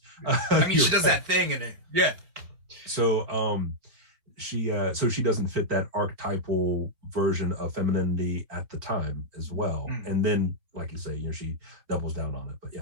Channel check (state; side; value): late; left; 4.3 ms